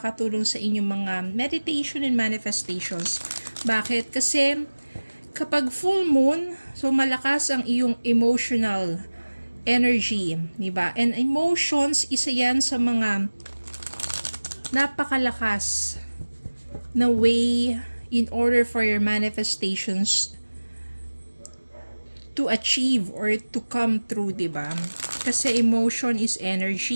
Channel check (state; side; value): inverted; both; correlation -1.00